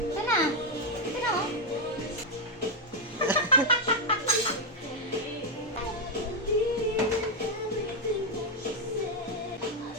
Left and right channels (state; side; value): normal; both; correlation 0.01